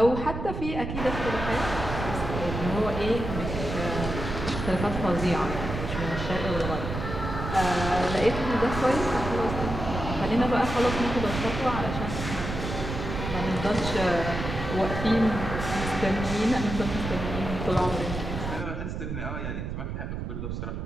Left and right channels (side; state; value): right; noise; rumble, 5 dB below the sound